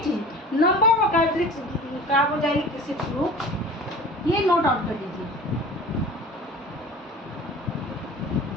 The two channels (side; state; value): both; normal; correlation 0.41